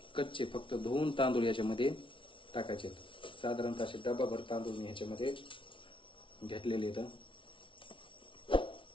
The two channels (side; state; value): right; late; 0.25 ms